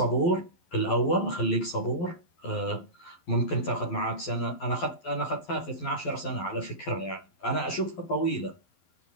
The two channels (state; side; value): late; right; 12 ms